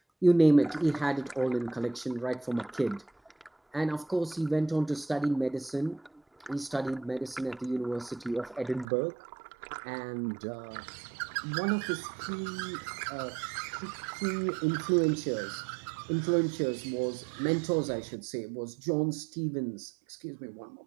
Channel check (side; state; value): left; drops out; at 8.8 s